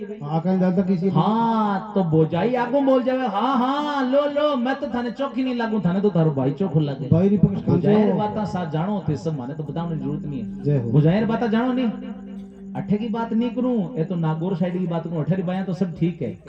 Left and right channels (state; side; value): identical; both; correlation 1.00